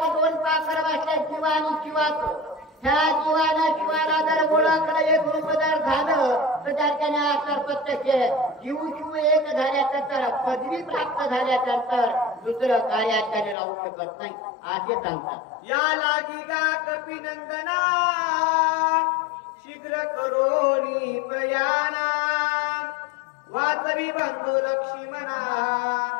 2 पाखर बसल्या जीवा आणि शिवाचं. ह्या जीवानं शिवाला जर ओळखलं एक रूप जर झालं तर त्याच्याने आकार प्रत्यक्ष जीव शिव एक झाल्यानंतर पदवी प्राप्त झाल्यानंतर दुसरं कार्याकडे राहू शकत नाही असे सांगतात. या लागी गा कपिनंदना शीघ्र करोनी प्रयाणा वाचवी बंधू लक्ष्मणा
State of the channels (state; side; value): drops out; right; at 13.6 s